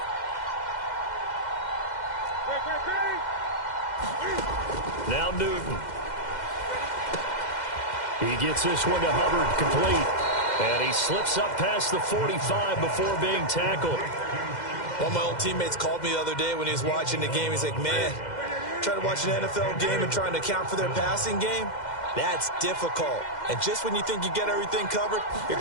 Now Newton. He gets this one to Hubbard, complete. And he slips up past the 45 before being tackled. One of my old teammates called me the other day when he was watching the game. He's like, man, trying to watch an NFL game and trying to account for their passing game, that's difficult. And just when you think you get everything covered, here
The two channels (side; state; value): right; late; 2.1 ms